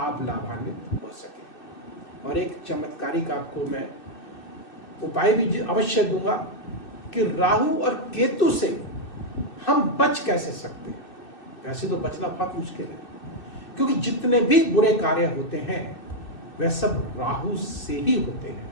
लाभान्वित हो सके। और एक चमत्कारिक आपको मैं उपाय भी अवश्य दूंगा कि राहु और केतु से हम बच कैसे सकते हैं। वैसे तो बचना बहुत मुश्किल है, क्योंकि जितने भी बुरे कार्य होते हैं वह सब राहु से ही होते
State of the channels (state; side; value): late; right; 2.6 ms